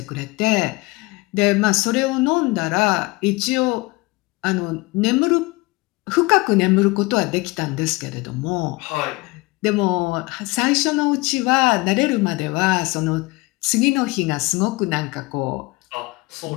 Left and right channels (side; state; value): right; quieter; 23.5 dB